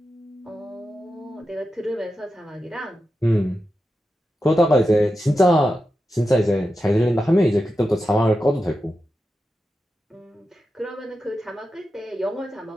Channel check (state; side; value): normal; both; correlation 0.90